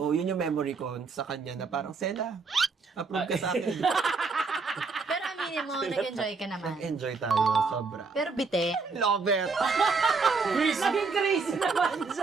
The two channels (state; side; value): quieter; left; 4.6 dB